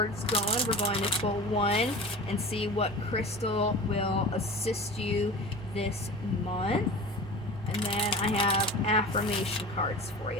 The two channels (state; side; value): normal; both; correlation 0.35